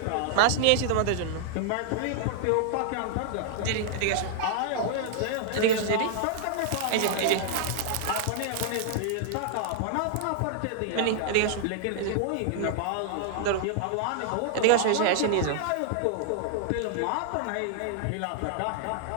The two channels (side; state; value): both; different; correlation -0.01